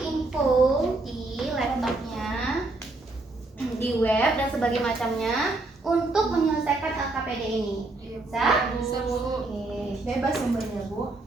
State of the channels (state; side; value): quieter; left; 3.1 dB